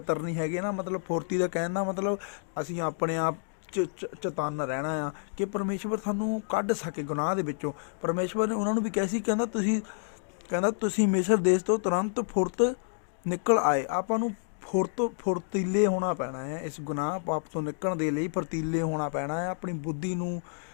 ਨਹੀਂ ਹੈਗੇ ਨਾ, ਮਤਲਬ ਫੁਰਤੀ ਦਾ ਕਹਿਣ ਦਾ ਮਤਲਬ ਅਸੀਂ ਆਪਣੇ ਆਪ ਚਤੰਨ ਰਹਿਣਾ ਆ ਕਿ ਪਰਮੇਸ਼ਵਰ ਸਾਨੂੰ ਕੱਢ ਸਕੇ ਗੁਨਾਹ ਦੇ ਵਿੱਚੋਂ। ਪਰਮੇਸ਼ਵਰ ਨੇ ਉਹਨਾਂ ਨੂੰ ਵੀ ਕਿਹਾ ਸੀ, ਕਹਿੰਦਾ ਤੁਸੀਂ ਮਿਸਰ ਦੇਸ਼ ਤੋਂ ਤੁਰੰਤ ਫੁਰਤ ਨਿਕਲ ਆਏ। ਆਪਾਂ ਨੂੰ ਫੁਰਤੀਲੇ ਹੋਣਾ ਪੈਣਾ ਹੈ, ਇਸ ਗੁਨਾਹ ਪਾਪ ਤੋਂ ਨਿਕਲਣ ਦੇ ਲਈ ਫੁਰਤੀਲੇ ਹੋਣਾ ਪੈਣਾ ਹੈ। ਆਪਣੀ ਬੁੱਧੀ ਨੂੰ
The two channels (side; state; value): right; silent; digital silence